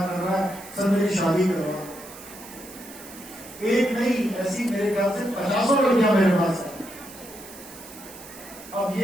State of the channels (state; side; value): noise; right; hiss, 17 dB below the sound